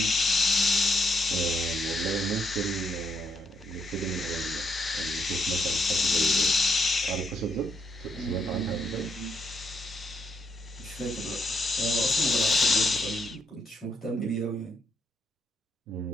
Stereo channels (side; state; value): both; normal; correlation 0.77